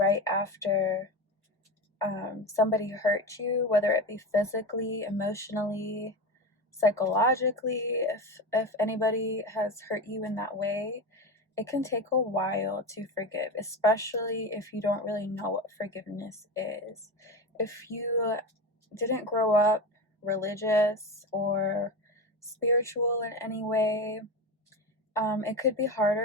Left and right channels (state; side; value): normal; both; correlation 0.23